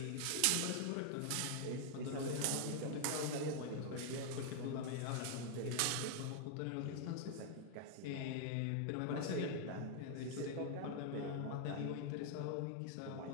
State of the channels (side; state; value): both; different; correlation 0.00